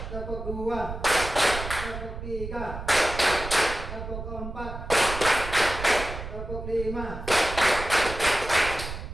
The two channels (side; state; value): right; noise; rumble, 8 dB below the sound